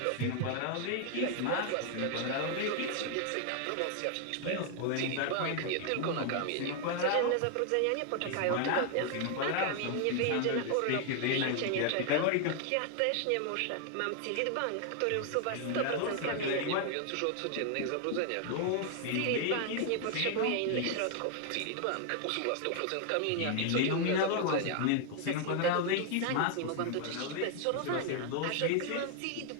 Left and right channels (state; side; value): different; both; correlation 0.00